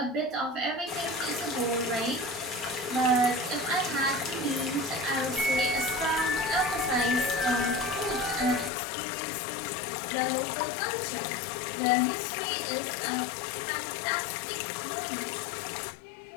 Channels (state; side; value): drops out; right; at 8.7 s